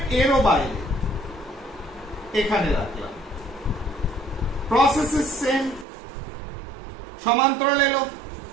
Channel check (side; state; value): left; drops out; at 5.9 s